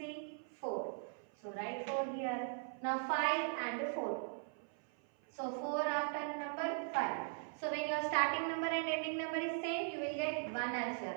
4. So write 4 here. Now 5 and 4. So 4 after number 5. So when your starting number and ending number is same, you will get 1 as your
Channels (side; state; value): left; silent; 51 dB below the other